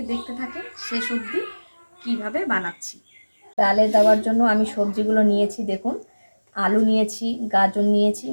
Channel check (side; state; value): both; inverted; correlation -1.00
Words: দেখতে থাকেন শেষ অবধি কীভাবে বানাচ্ছি। ডালে দেওয়ার জন্য আমি সবজিগুলো নিয়েছি, দেখুন। আলু নিয়েছি, গাজর নিয়েছি,